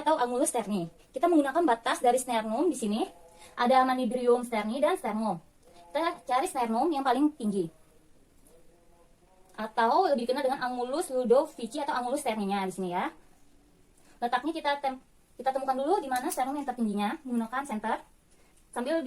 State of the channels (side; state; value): both; identical; correlation 1.00